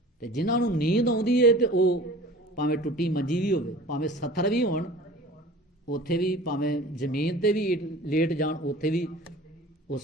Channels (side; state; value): both; normal; correlation 0.42